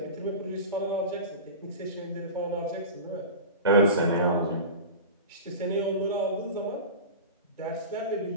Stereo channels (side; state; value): both; inverted; correlation -0.30